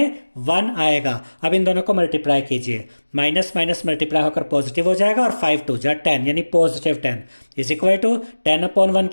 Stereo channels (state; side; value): inverted; both; correlation -1.00